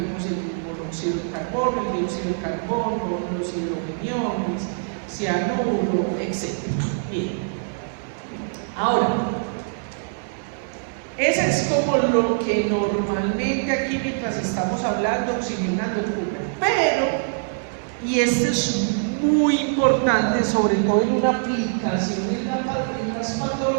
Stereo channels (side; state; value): left; silent; digital silence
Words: el monóxido de carbono, el dióxido de carbono, los hidrogeniones, cianuro, etc. Bien. Ahora, ese es como lo que normalmente aquí mientras estamos hablando, oxigenando ocurre. Pero, y esto es muy importante, sobre todo en una aplicación en las